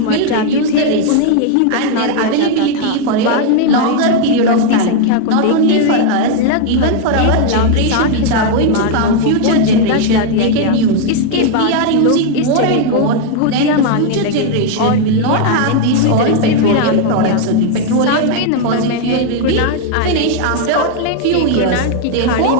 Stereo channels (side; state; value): both; different; correlation 0.00